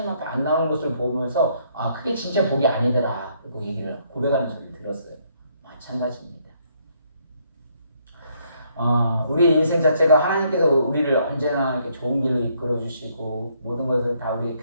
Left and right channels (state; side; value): inverted; both; correlation -0.70